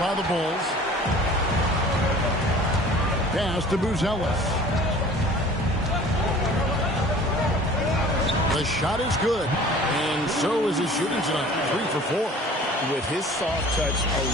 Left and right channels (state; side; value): normal; both; correlation 0.46